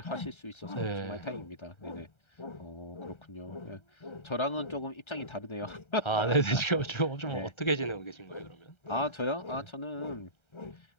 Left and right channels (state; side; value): late; right; 1.3 ms